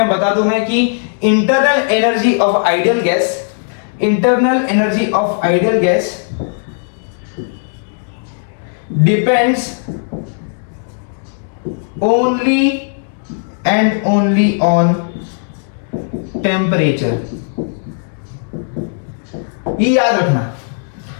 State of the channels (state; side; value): silent; right; digital silence